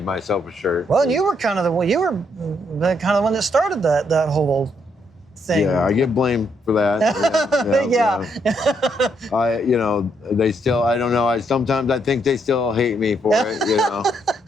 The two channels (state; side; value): normal; both; correlation 0.74